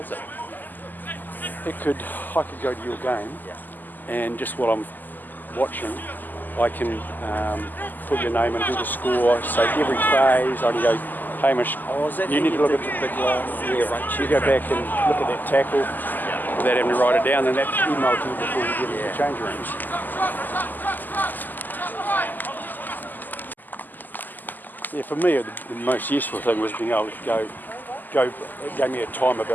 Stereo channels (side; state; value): right; late; 0.086 ms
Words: is it? I could go to your game, and just while I'm watching, I can put your name and do the score. So every phase, I can go, Hamish, you need to look at the big long rearrange. You go back and look at that tackle without having to write it down, and that's emailed to you before you get into the change rooms. Yeah, for me, the most useful thing was being able to go. It gave me a time